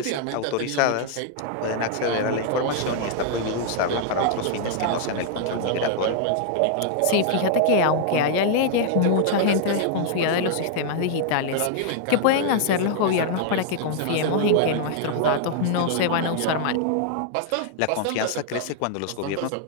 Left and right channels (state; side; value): different; both; correlation -0.01